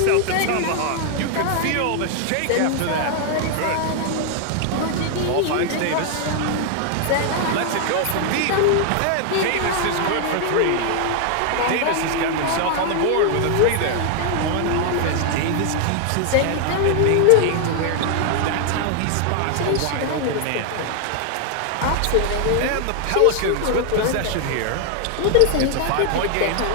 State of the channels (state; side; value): different; both; correlation 0.00